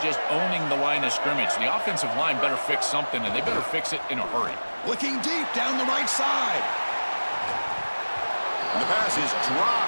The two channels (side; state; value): both; inverted; correlation -1.00